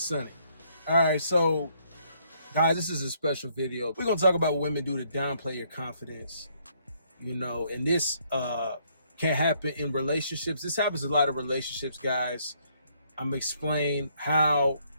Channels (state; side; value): inverted; both; correlation -0.69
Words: sunny. All right, so guys, this is a special video. We're gonna talk about what women do to downplay your confidence. And this can happen in relationships. This happens in a lot of relationships, guys. I'm gonna explain how